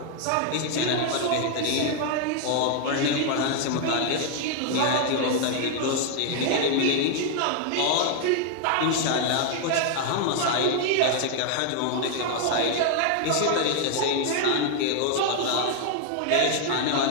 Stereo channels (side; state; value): both; different; correlation 0.00